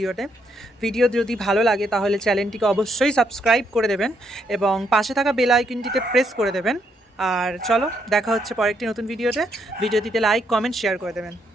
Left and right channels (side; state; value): both; normal; correlation 0.75